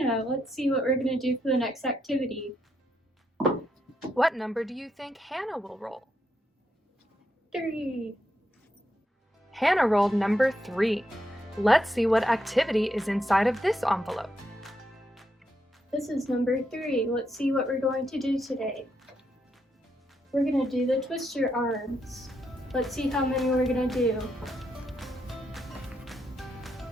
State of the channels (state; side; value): normal; both; correlation 0.81